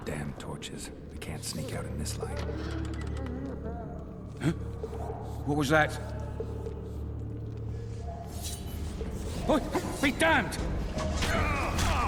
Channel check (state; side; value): identical; both; correlation 1.00